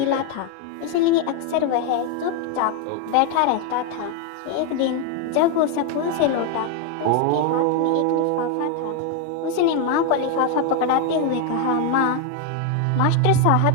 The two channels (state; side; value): different; both; correlation 0.01